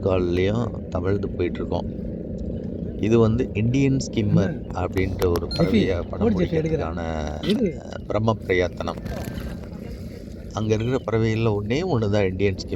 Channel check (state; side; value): identical; both; correlation 1.00